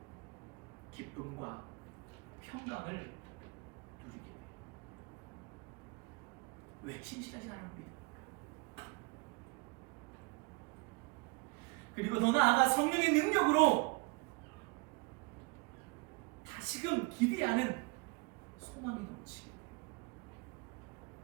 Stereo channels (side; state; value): left; quieter; 29.3 dB